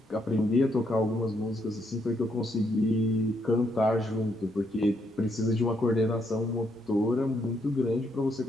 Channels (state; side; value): normal; both; correlation 0.75